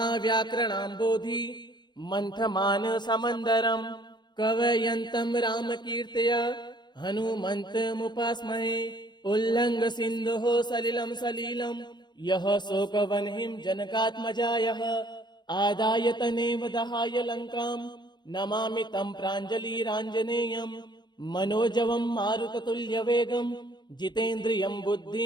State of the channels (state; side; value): late; right; 0.21 ms